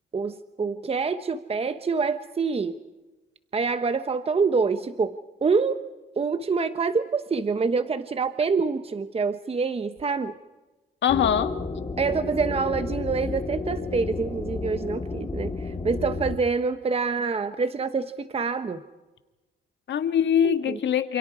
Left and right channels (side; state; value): both; normal; correlation 0.45